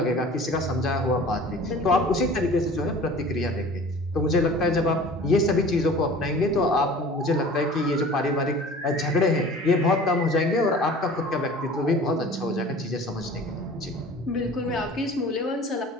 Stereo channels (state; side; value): normal; both; correlation 0.43